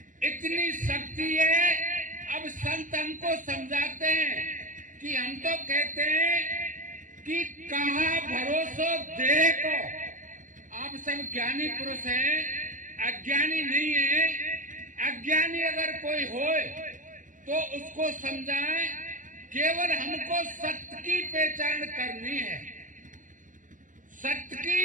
इतनी शक्ति है। अब संत हमको समझाते हैं कि हम तो कहते हैं कि कहा भरोसा देह को। आप सब ज्ञानी पुरुष हैं, अज्ञानी नहीं है। अज्ञानी अगर कोई होए तो उसको समझाएं, केवल हमको सत्य की पहचान करनी है, सत्य की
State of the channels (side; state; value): left; late; 0.38 ms